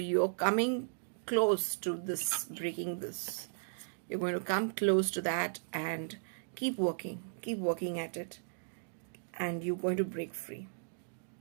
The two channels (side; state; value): left; silent; digital silence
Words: coming close to this, breaking this. You're going to come close to that, and keep working at it, and you're going to break free.